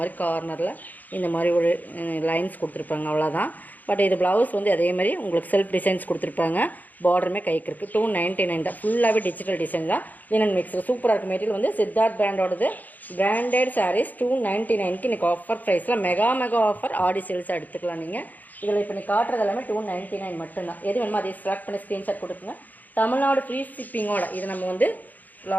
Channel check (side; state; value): right; late; 0.082 ms